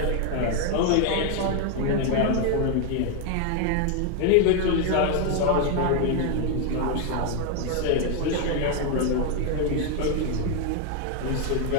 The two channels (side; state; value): both; different; correlation 0.01